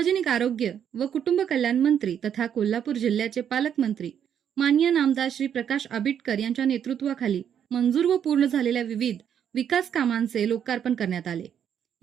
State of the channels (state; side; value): quieter; left; 8.8 dB